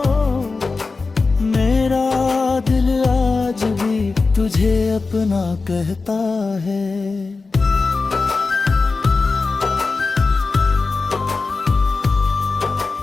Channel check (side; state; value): right; quieter; 4.0 dB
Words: मेरा दिल आज भी तुझे अपना कहता है।